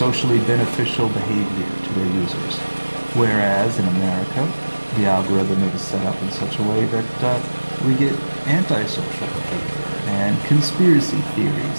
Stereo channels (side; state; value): both; inverted; correlation -1.00